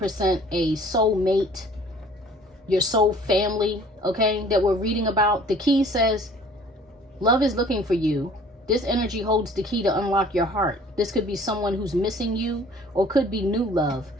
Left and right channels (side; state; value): both; normal; correlation 0.52